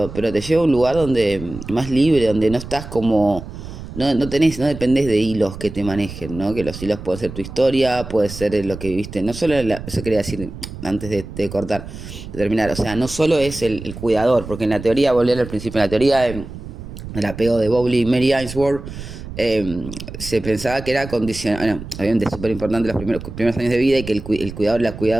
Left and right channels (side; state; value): right; noise; rumble, 11 dB below the sound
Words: te lleva a un lugar donde más libre, donde no estás como, no dependés de hilos que te manejen, ¿no? Que los hilos pueden ser tu historia, puede ser lo que viviste, no solo, eso quería decir antes de cortar, de terminar, o sea, no solo es el cuidador, porque en la teoría, volviendo al principio, en la teoría el apego de Bowley y Mary Ainsworth, se pensaba que era condicional, bueno, obviamente es súper importante los primeros años de vida y que el cuidador, la